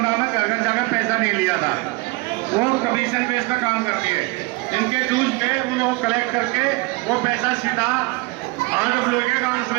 में घर घर जाकर पैसा नहीं लिया था, वो कमीशन बेस पर काम करती है। इनके ड्यूज पे उन्हें वो कलेक्ट करके वो पैसा सीधा RWA के अकाउंट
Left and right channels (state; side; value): quieter; left; 24.2 dB